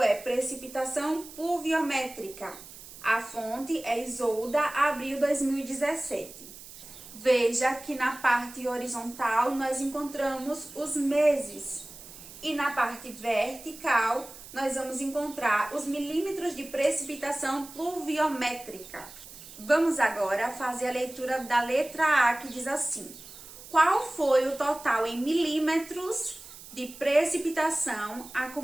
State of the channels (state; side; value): noise; right; hiss, 16 dB below the sound